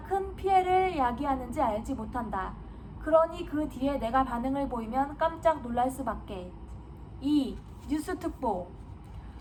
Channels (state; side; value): identical; both; correlation 1.00